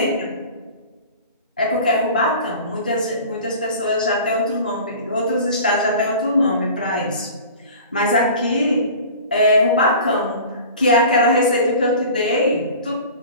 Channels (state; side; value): inverted; both; correlation -0.40